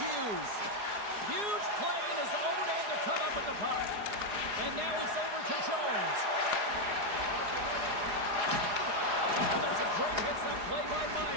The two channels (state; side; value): late; left; 4.8 ms